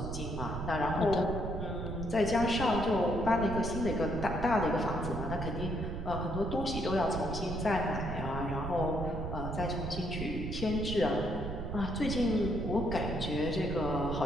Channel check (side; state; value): right; noise; rumble, 5 dB below the sound